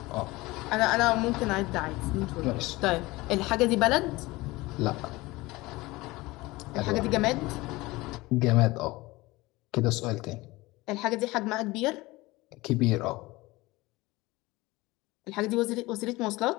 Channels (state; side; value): quieter; right; 20.9 dB